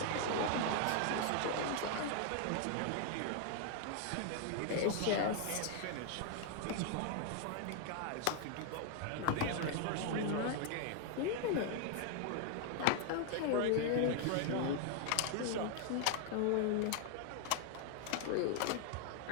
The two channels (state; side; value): different; both; correlation 0.00